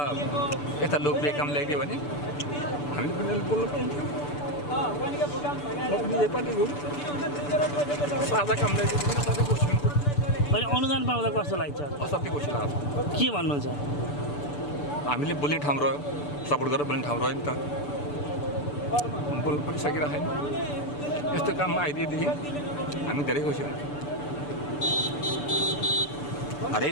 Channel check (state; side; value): late; right; 6.9 ms